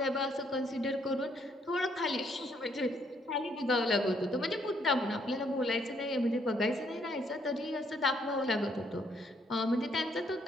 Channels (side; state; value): both; normal; correlation 0.70